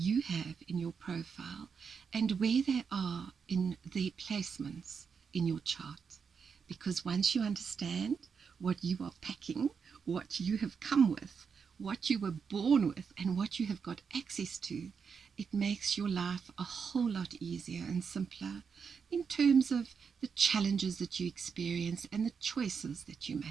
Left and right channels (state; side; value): quieter; left; 6.1 dB